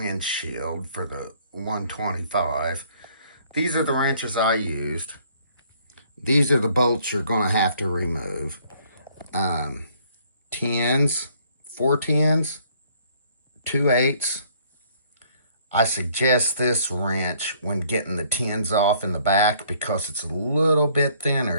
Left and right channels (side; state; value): both; inverted; correlation -0.62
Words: for the 125. These are the wrenches I used. These are the bolts you're going to have to remove. 10s, 4 10s, 2 8s. I suggest this wrench when getting the 10s off in the back because it's a little bit